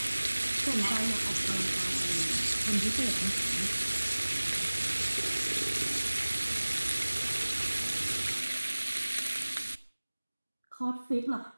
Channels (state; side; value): inverted; both; correlation -1.00